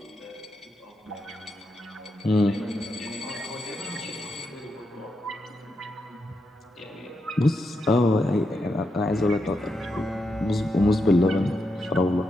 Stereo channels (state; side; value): normal; both; correlation 0.84